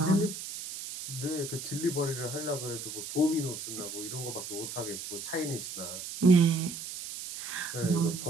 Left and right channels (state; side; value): noise; right; hiss, 8 dB below the sound